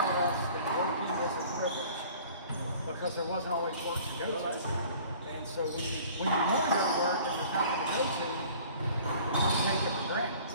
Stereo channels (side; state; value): both; inverted; correlation -0.49